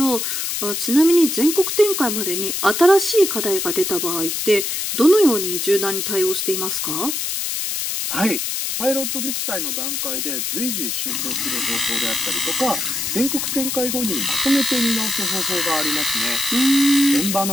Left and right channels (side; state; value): left; noise; hiss, 2 dB below the sound